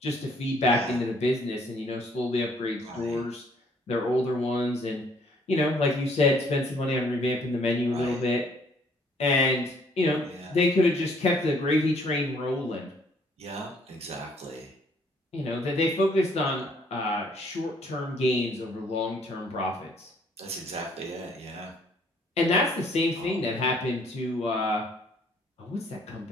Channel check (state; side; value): normal; both; correlation 0.63